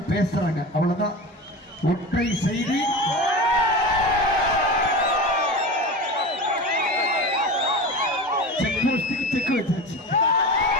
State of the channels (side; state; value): both; normal; correlation 0.29